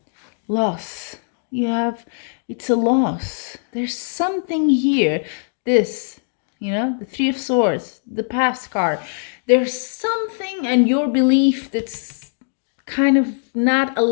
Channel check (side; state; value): right; silent; digital silence